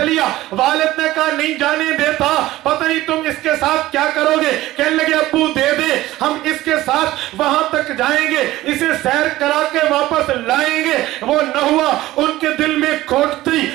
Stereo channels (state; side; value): quieter; left; 16.4 dB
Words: والد نے کہا نہیں جانے دیتا, پتہ نہیں تم اس کے ساتھ کیا کرو گے. کہنے لگے ابو دے دے, ہم اس کے ساتھ وہاں تک جائیں گے, اسے سیر کرا کے واپس لائیں گے. وہ نہ ہوا, ان کے دل میں کھوٹ تھی,